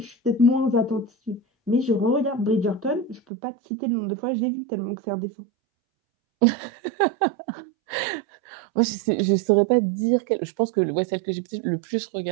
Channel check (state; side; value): drops out; left; at 3.2 s